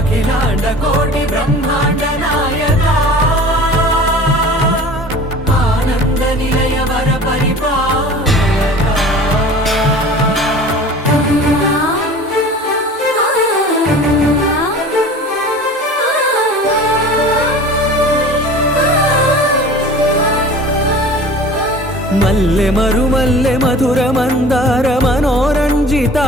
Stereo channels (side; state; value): both; normal; correlation 0.41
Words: కోటి బ్రహ్మాండ నాయక ఆనంద నిలయ వర పరిపాలక మల్లె మరుమల్లె మధుర మందార